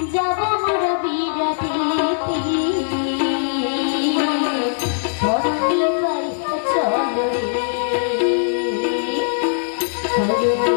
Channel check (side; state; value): right; silent; digital silence